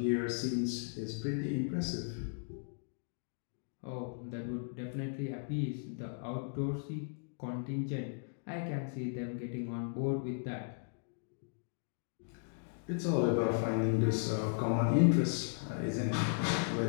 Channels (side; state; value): right; silent; digital silence